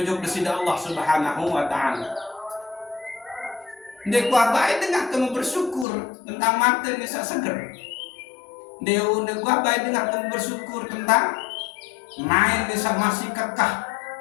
sida Allah Subhanahu wa taala. Ndik kuat baik dengan kamu bersyukur tentang mata ni seger. Ndik kuat baik dengan kamu bersyukur tentang main desa masih kekah,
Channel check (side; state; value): right; drops out; at 5.9 s